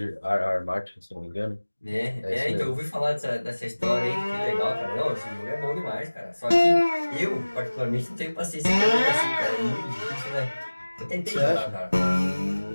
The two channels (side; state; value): both; inverted; correlation -1.00